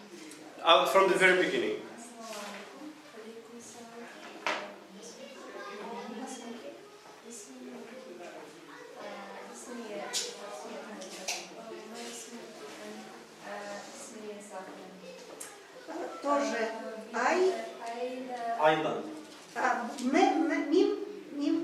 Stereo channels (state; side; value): identical; both; correlation 1.00